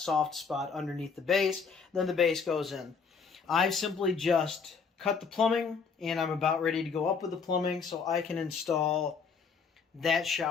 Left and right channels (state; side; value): quieter; right; 5.6 dB